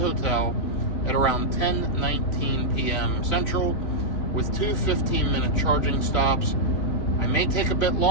at around 10:19 p.m. Central with 2 15-minute charging stops. I may take a bit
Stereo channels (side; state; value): right; late; 3.0 ms